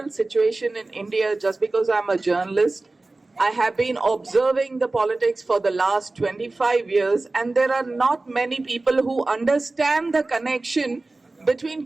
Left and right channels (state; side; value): quieter; left; 3.2 dB